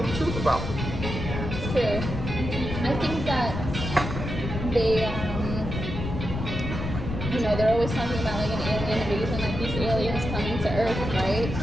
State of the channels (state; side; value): noise; left; rumble, 5 dB below the sound